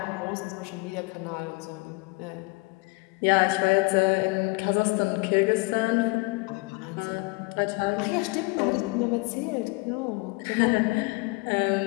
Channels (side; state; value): right; quieter; 27.4 dB